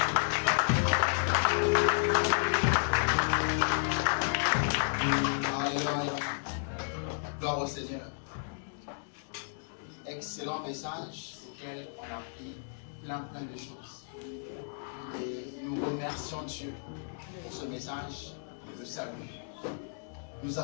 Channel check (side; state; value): right; silent; digital silence